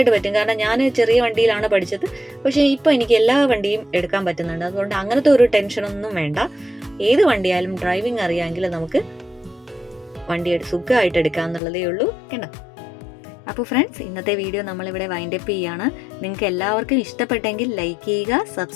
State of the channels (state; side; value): drops out; right; at 11.6 s